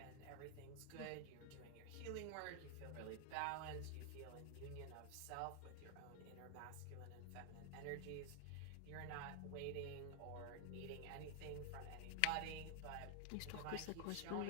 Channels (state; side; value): different; both; correlation 0.00